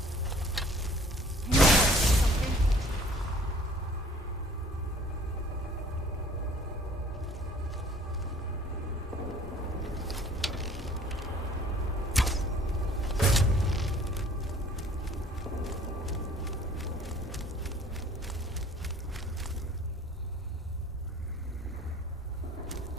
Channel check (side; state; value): both; normal; correlation 0.53